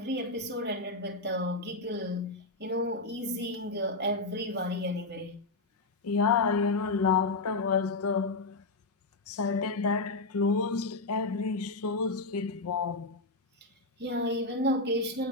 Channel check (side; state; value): right; quieter; 3.2 dB